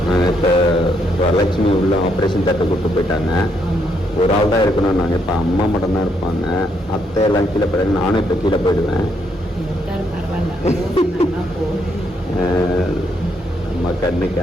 இப்போ வரலட்சுமி உள்ள ஆப்ரேஷன் தட்டை கூப்பிட்டு போயிட்டாங்க. ஒரு ஆள் தான் இருக்கணும். நாங்கள் இப்போ அம்மா மட்டும் தான் இருப்பாங்க. அத்தை எல்லாம் கீழே போயிடுங்க. நானும் இப்போ கீழே போயிடுவேன். பரவாயில்ல போ. அம்மா கண்ணு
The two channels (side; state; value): both; normal; correlation 0.75